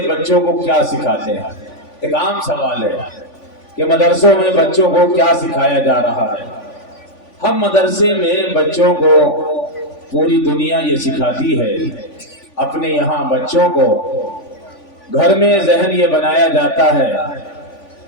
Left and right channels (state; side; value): late; right; 3.5 ms